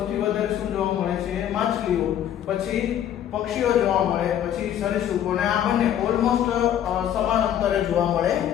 વધારે શું જોવા મળે છે? માછલીઓ, પછી પક્ષીઓ જોવા મળે, પછી સરીસૃપો, અને આ બંને ઓલમોસ્ટ સમાન અંતરે જોવા મળે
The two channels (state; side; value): quieter; right; 10.5 dB